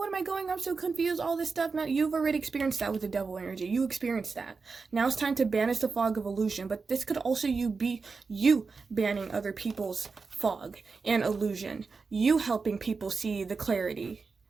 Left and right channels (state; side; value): quieter; left; 4.6 dB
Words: am I going? I'm so confused, all this stuff. Now, you've already experienced that with the devil energy. You experienced that. Now it's time to banish the fog of illusion. But this could also be you banning other people's fog and illusion. You helping people see the clarity.